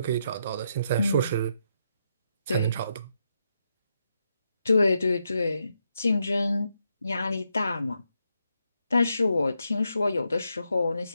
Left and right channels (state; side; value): inverted; both; correlation -0.81